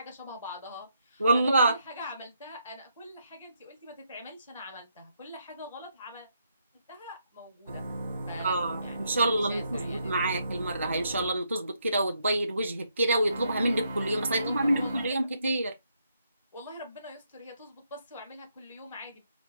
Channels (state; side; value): inverted; both; correlation -0.77